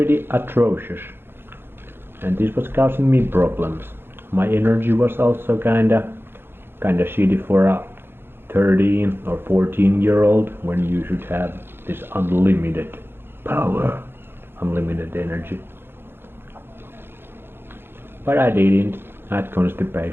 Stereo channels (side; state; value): left; late; 0.11 ms